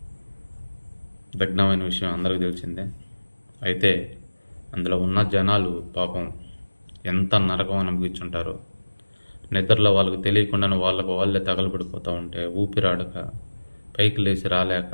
దగ్ధమైన విషయం అందరికీ తెలిసిందే. అయితే అందులో ఉన్న జనాలు పాపం ఎంత నరకం అనుభవించుంటారో. నిద్రలో వాళ్ళకు తెలియకుండానే వాళ్ళే తగలబడిపోతూ ఉంటే ఊపిరాడక పైకి లేచి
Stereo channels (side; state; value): both; inverted; correlation -1.00